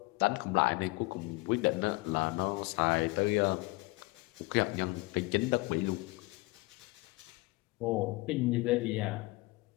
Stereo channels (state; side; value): quieter; right; 23.4 dB